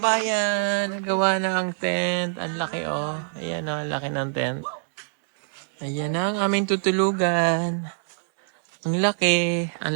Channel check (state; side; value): silent; left; 62 dB below the other